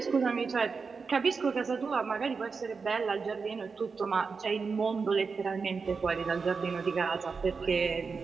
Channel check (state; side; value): quieter; left; 5.0 dB